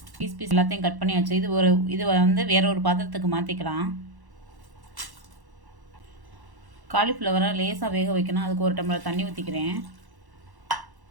பீஸ் எல்லாத்தையும் கட் பண்ணியாச்சு. இது வந்து வேற ஒரு பாத்திரத்துக்கு மாற்றிக்கலாம். காலிஃப்ளவரை லேசாக வேக வைக்கணும். அதுக்கு ஒரு டம்ளர் தண்ணி ஊற்றிக்கிறேன்.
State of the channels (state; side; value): late; left; 1.1 ms